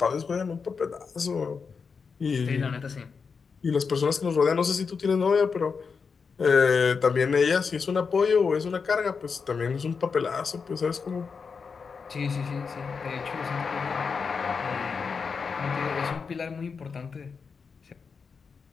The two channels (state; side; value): quieter; right; 5.4 dB